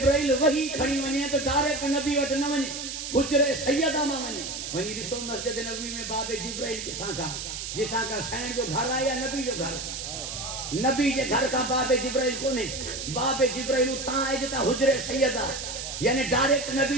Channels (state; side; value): noise; right; hiss, 6 dB below the sound